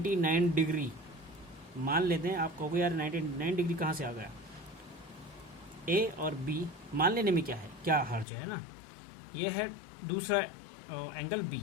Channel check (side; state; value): right; drops out; at 8.2 s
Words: डिग्री, मान लेते हैं, आप कहोगे यार 99 डिग्री कहाँ से आ गया? A और B मान लेने में क्या हर्ज है ना। ये है दूसरा एंगल B।